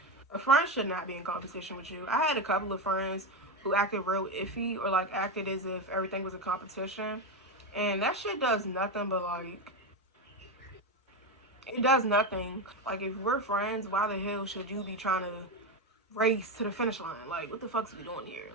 a friend should not be in competition with you. I had a couple of friends who acted real iffy or like acted as if everything was a competition. And that shit does nothing but like, it does nothing. Like, if we're friends, why the hell should you be trying to race to the finish line? Like, what the fuck's we doing here?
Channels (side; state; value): both; normal; correlation 0.13